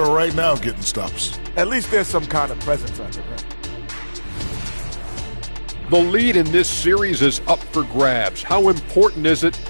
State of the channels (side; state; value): both; inverted; correlation -1.00